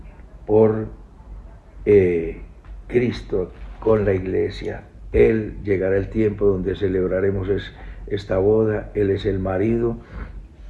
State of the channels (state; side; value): identical; both; correlation 1.00